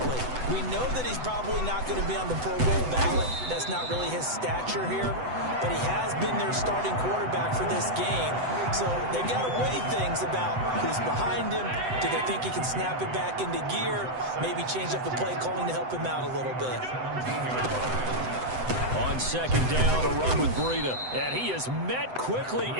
We know that he's probably not going to be on the Pro Bowl ballot. That's not really his stature here. But he has been their starting quarterback for this game. So they've got to weigh things about who's behind him. Do they think he can snap it back into gear? Maybe change up the play calling to help him out a little bit. On 2nd down, a run with Breida. And he is met quickly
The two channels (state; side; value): late; left; 7.9 ms